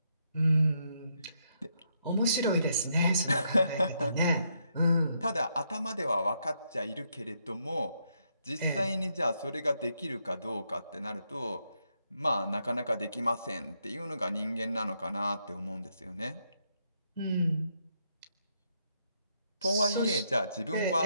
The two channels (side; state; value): both; inverted; correlation -0.77